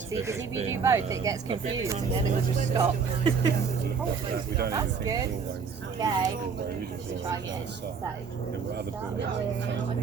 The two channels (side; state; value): left; quieter; 5.8 dB